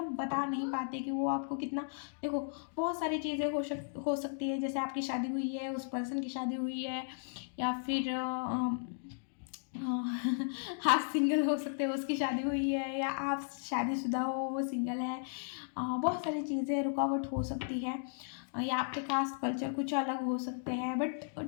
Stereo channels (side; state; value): right; silent; digital silence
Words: बता नहीं पाते कि वो आपको कितना। देखो बहुत सारी चीज़ें हो सकती है, जैसे आपकी शादी हुई है, उस पर्सन की शादी हुई है, या फिर आप सिंगल हो सकते हो, उसकी शादी हुई है, या आप शादीशुदा हो वो सिंगल है। बहुत सारी चीज़ें रुकावट हो सकती है, या आपके कास्ट कल्चर कुछ अलग हो सकते हैं। बट